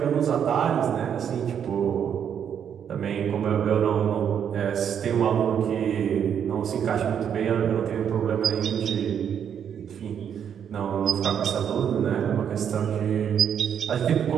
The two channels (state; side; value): quieter; left; 8.4 dB